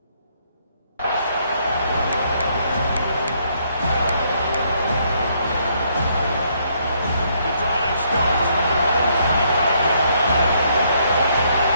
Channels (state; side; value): inverted; both; correlation -0.71